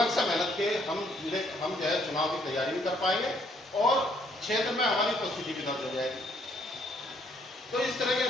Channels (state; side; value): normal; both; correlation 0.68